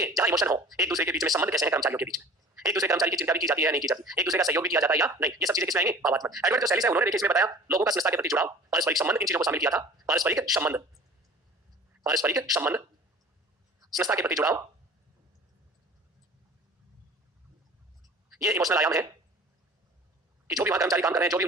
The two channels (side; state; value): both; normal; correlation 0.43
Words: जहां इमोशन हो, एक दूसरे के बीच में संबंध कैसे हैं कर्मचारियों के बीच में, एक दूसरे कर्मचारी की चिंता भी की जाती है नहीं की जाती, एक दूसरे का सहयोग भी किया जाता है या नहीं, ये सब चीजें किसमें आएंगी, भावात्मक। एडवर्ड जो सैलिस है उन्होंने देखिए इसमें बताया लोगों का संस्था के प्रति जुड़ाव, पारस्परिक संबंध, इन चीजों को शामिल किया था। पारस्परिक संबंध, पारस्परिक संबंध, संस्था के प्रति जुड़ाव, ये इमोशनल आयाम है कि जो भी वहां कर्मचारी काम कर रहे हैं, जो भी